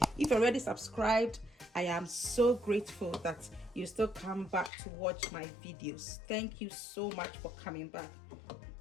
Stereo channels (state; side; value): drops out; right; at 4.7 s